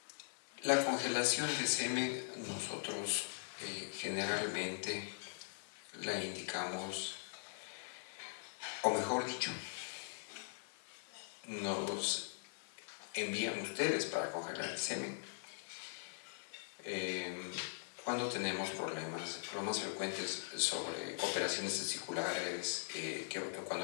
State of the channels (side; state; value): right; silent; 50 dB below the other